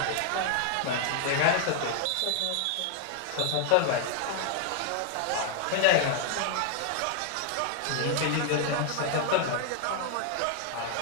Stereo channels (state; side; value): different; both; correlation 0.00